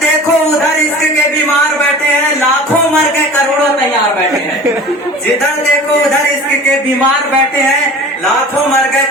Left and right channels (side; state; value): both; normal; correlation 0.39